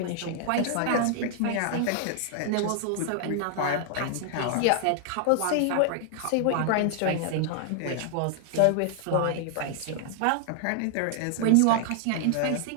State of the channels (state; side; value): different; both; correlation 0.00